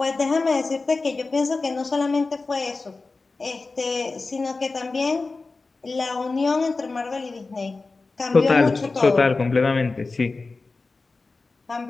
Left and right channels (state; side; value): quieter; right; 3.8 dB